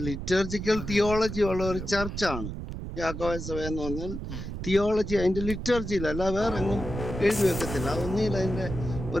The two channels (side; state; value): right; noise; rumble, 6 dB below the sound